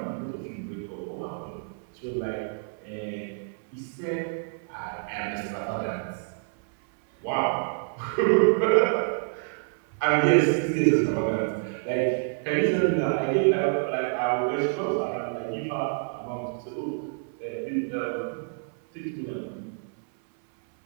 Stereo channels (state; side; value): silent; left; 58 dB below the other